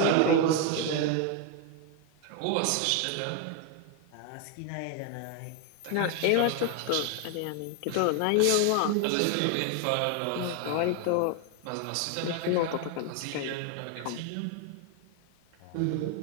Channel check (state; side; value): different; both; correlation 0.01